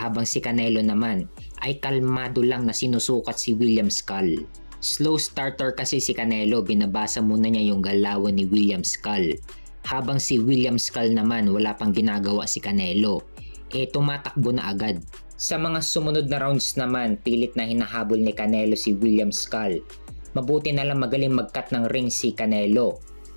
si Canelo naman ay kalmado lang na sinusukat si William Skull. Slow starter kasi si Canelo, binabasa muna niya yung galawan ni William Skull. Habang si William Skull naman wala pang ginagawa si Canelo, tumatakbo na agad. Sa mga sumunod na rounds naman, pilit na hinahabol ni Canelo si William Skull. Mabuti na lang magaling mag-cut ng ring si Canelo,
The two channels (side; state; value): both; inverted; correlation -1.00